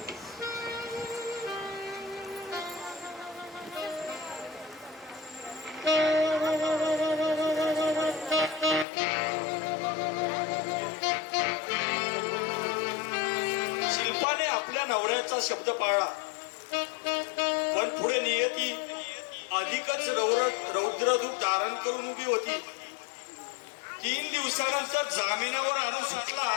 शिल्पाने आपल्या नवऱ्याचा शब्द पाळला, पण पुढे नियती अधिकच रौद्ररूप धारण करून उभी होती. 3 दिवसानंतर जामिनावर आणून सुटला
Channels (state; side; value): drops out; right; at 8.8 s